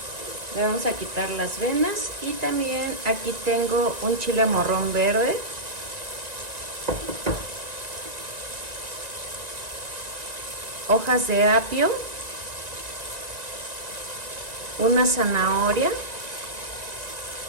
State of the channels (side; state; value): left; late; 1.9 ms